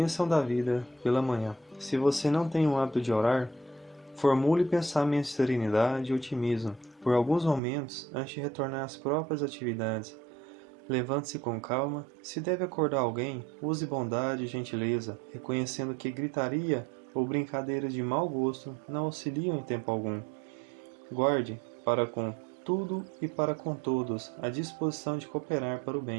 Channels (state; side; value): drops out; left; at 7.6 s